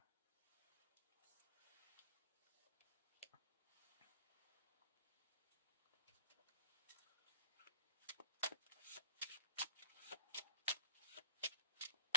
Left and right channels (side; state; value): both; inverted; correlation -0.43